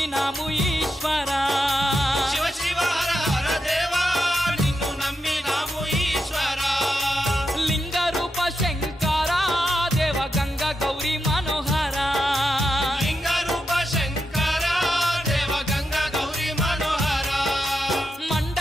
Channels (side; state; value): both; normal; correlation 0.87